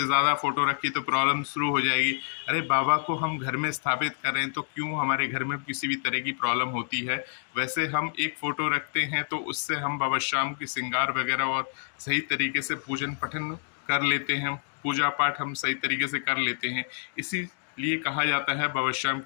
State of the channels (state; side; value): silent; right; digital silence